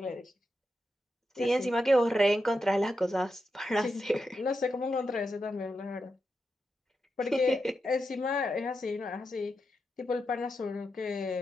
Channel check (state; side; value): normal; both; correlation 0.87